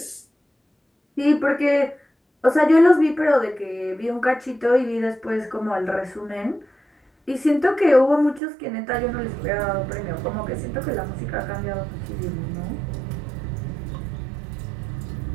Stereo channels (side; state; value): left; drops out; at 8.4 s